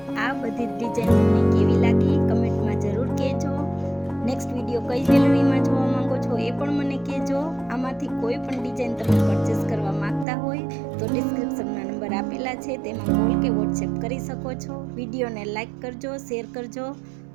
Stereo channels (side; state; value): left; drops out; at 10.2 s